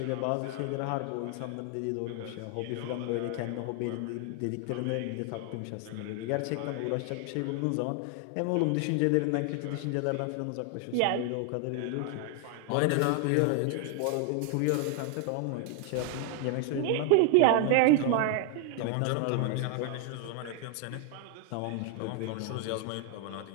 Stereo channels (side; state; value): both; different; correlation 0.00